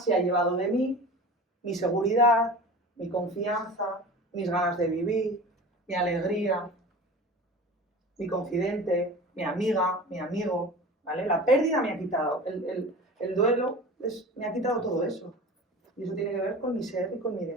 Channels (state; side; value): normal; both; correlation 0.36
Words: ha llevado de mí mi seguridad, mi confianza, mis ganas de vivir, mi alegría, mi confidente, mi amiga, mi amigo, ¿vale? La pérdida me ha quitado, el duelo me ha quitado todo eso. Y eso tiene que ver con mi ser y con mi